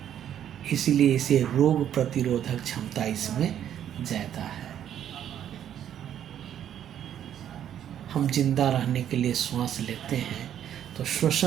इसलिए इसे रोग प्रतिरोधक क्षमता इसमें ज़्यादा है। हम जिंदा रहने के लिए श्वास लेते हैं तो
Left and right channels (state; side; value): quieter; left; 10.2 dB